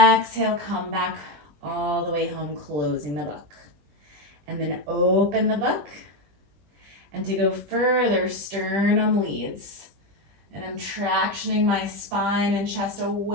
come back all the way home, closing the book. And then open the book. And to go further, sternum leads. And I'm tractioning my spine and chest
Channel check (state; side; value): late; left; 20 ms